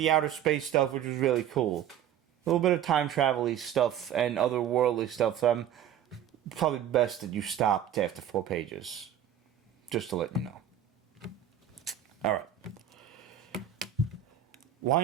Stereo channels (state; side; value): quieter; left; 10.0 dB